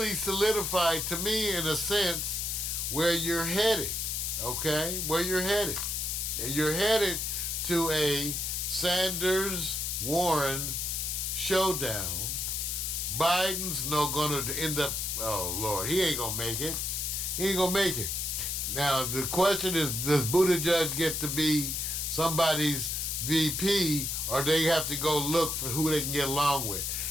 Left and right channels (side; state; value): left; noise; hiss, 1 dB below the sound